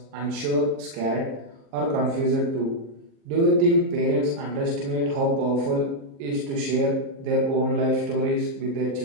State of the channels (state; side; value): late; left; 36 ms